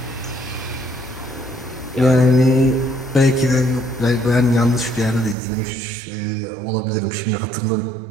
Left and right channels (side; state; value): left; drops out; at 5.4 s